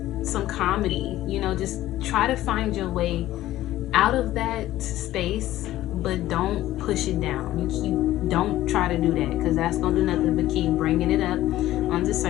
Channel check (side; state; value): right; quieter; 14.7 dB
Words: some comedy, you know, just try to find your way out of that space, but don't push it down. Don't try to do that, because that's gonna do nothing but keep bringing it up on the